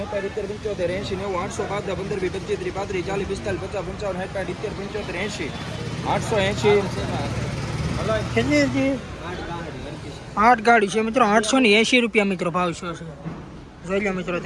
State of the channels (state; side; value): identical; both; correlation 1.00